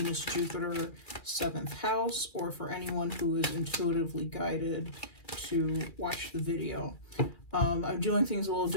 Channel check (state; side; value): late; right; 2.4 ms